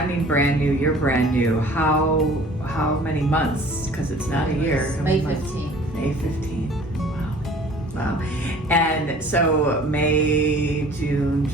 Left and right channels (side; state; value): both; normal; correlation 0.49